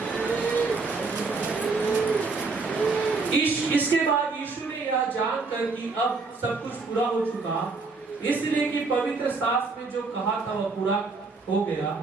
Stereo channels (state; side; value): quieter; left; 4.1 dB